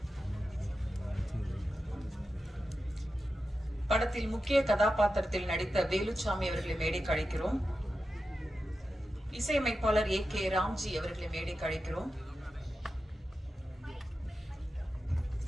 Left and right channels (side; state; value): both; normal; correlation 0.91